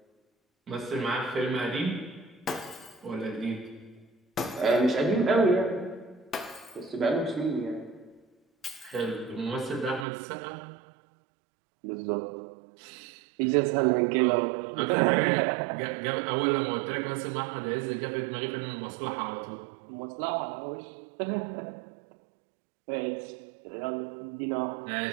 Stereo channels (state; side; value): drops out; left; at 10.1 s